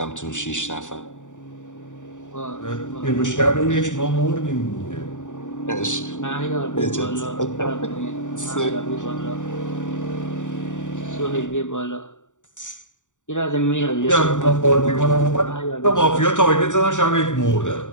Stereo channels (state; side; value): late; right; 0.86 ms